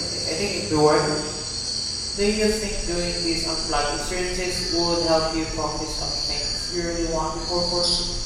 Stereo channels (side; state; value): both; identical; correlation 1.00